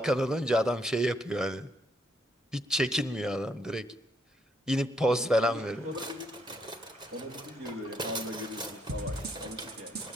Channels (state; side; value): normal; both; correlation 0.74